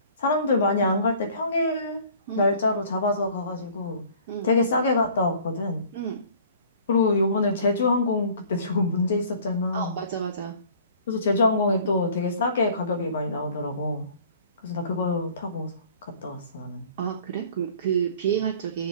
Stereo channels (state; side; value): inverted; both; correlation -0.51